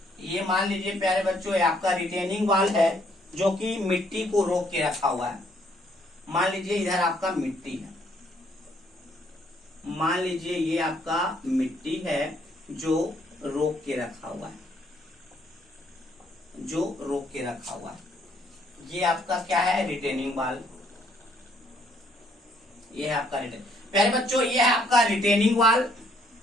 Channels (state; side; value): normal; both; correlation 0.67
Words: ये मान लीजिए प्यारे बच्चों ये आपका रिटेनिंग वॉल है जो कि मिट्टी को रोक के रखा हुआ है। मान लीजिए इधर आपका मिट्टी है, मान लीजिए ये आपका मिट्टी है जो रोक के रखा हुआ है, जो रोक के रखा हुआ है। ये आपका क्या है, रिटेनिंग वॉल। ये है आपका प्यारे बच्चों ये है आपका रिटेनिंग वॉल,